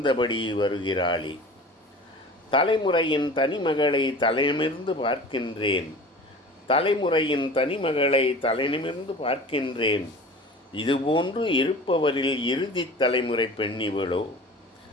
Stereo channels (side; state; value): both; normal; correlation 0.39